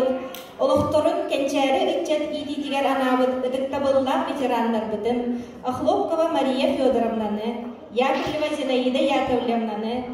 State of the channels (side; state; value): both; identical; correlation 1.00